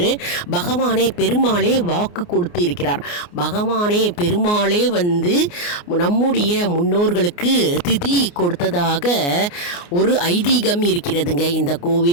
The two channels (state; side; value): late; right; 29 ms